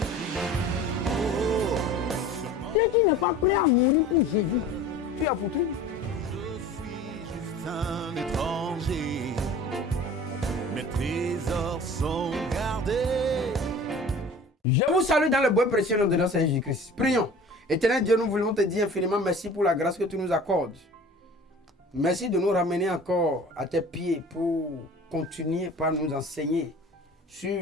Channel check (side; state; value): both; normal; correlation 0.43